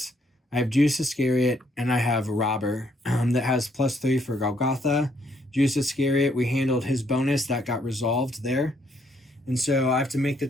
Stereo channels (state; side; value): normal; both; correlation 0.70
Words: I have Judas Iscariot, and I have Robber that has +3 for Golgotha. Judas Iscariot, we handled his bonus. That got resolved there. And so I have to make the